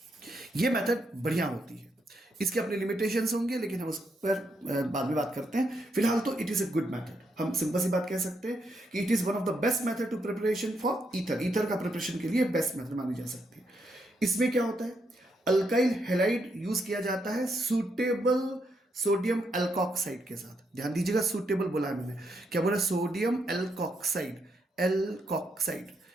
ये मेथड बढ़िया होती है, इसके अपने लिमिटेशंस होंगे, लेकिन हम उस पर बाद में बात करते हैं। फिलहाल तो it is a good method. हम सिंपल सी बात कह सकते हैं कि it is one of the best method to preparation for ether. Ether का प्रिपरेशन के लिए बेस्ट मेथड मानी जा सकती है। इसमें क्या होता है? अल्काइल हैलाइड यूज किया जाता है सूटेबल सोडियम एल्कोक्साइड के साथ। ध्यान दीजिएगा, सूटेबल बोला है मैंने, क्या बोला? Sodium alkoxide, alkoxide,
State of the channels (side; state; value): both; normal; correlation 0.78